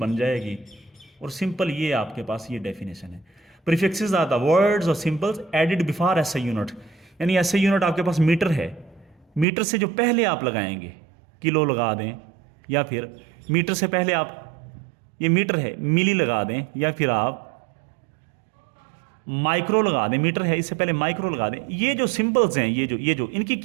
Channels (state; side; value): drops out; left; at 9.5 s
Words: जाएगी, और सिंपल ये आपके पास ये डेफिनेशन है। प्रीफिक्सेस आर द वर्ड्स और symbols added before SI unit, यानी SI यूनिट आपके पास मीटर है, मीटर से जो पहले आप लगाएंगे, किलो लगा दें, या फिर मीटर से पहले आप, ये मीटर है, मिली लगा दें, या फिर आप माइक्रो लगा दें, मीटर है इससे पहले माइक्रो लगा दें। ये जो सिंबल्स हैं, ये जो इनकी